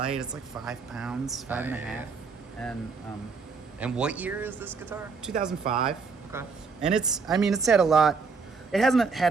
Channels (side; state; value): left; quieter; 4.9 dB